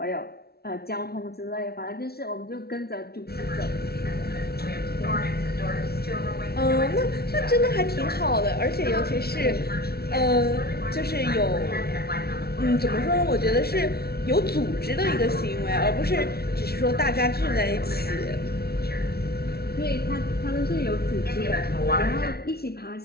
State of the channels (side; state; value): right; late; 0.45 ms